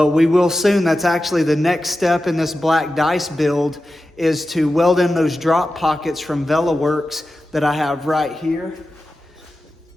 we will soon. That's actually the next step in this black dice build, is to weld in those drop pockets from VelaWorks that I have right here.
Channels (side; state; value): both; normal; correlation 0.92